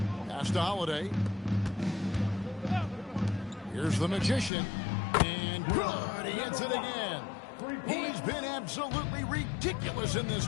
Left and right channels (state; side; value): drops out; right; at 4.5 s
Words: Pass to Holiday. Here's the Magician. And good. He hits it again. He's been absolutely ridiculous in this